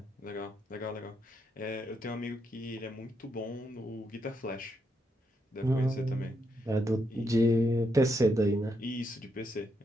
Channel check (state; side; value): normal; both; correlation 0.80